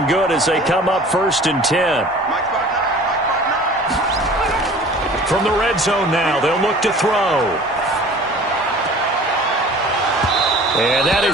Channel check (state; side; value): normal; both; correlation 0.45